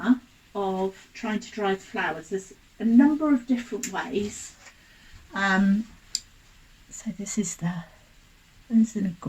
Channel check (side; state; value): both; identical; correlation 1.00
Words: of trying to dry flowers. There's a number of different ways. So this is isn't it